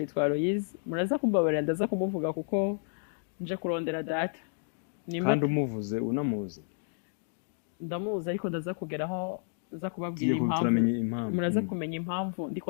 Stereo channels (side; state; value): right; silent; digital silence